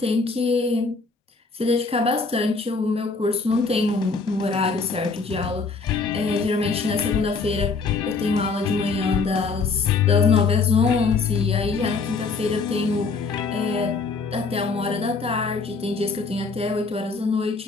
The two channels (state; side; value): quieter; right; 4.4 dB